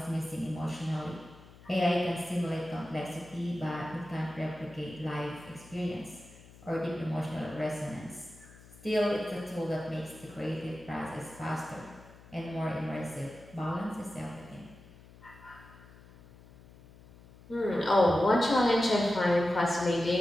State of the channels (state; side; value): noise; left; hum, 22 dB below the sound